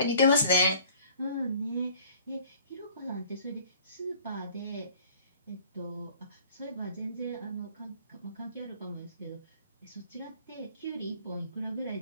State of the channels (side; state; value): both; inverted; correlation -0.51